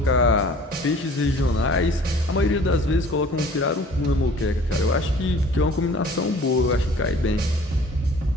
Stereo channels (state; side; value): normal; both; correlation 0.50